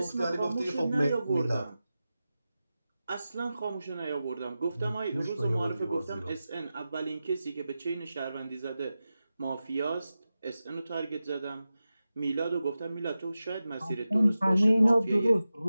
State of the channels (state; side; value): inverted; both; correlation -0.94